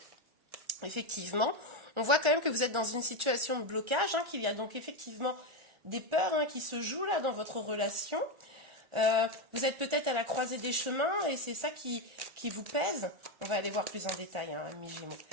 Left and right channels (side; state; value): left; late; 1.4 ms